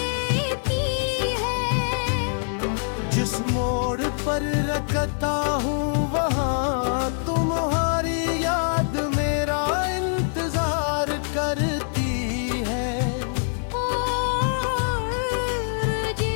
है। जिस मोड़ पर रखता हूँ वहाँ तुम्हारी याद मेरा इंतजार करती है। और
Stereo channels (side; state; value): right; silent; 62 dB below the other